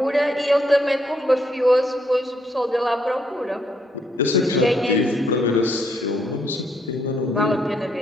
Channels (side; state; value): both; normal; correlation 0.73